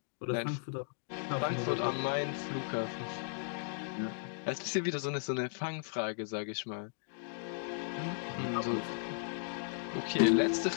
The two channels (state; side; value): silent; right; digital silence